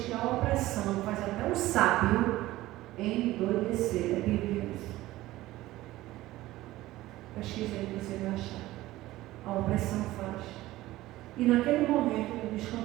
que a opressão faz até o sábio endoidecer. A Bíblia diz. Pesquisa aí que você vai achar. A opressão faz. E naquele momento de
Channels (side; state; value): left; quieter; 16.8 dB